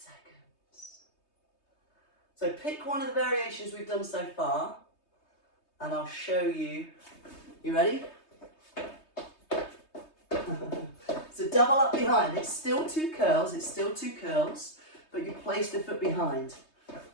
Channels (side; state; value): right; late; 3.2 ms